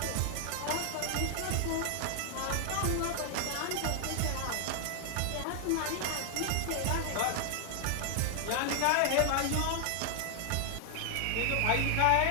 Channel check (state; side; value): different; both; correlation 0.00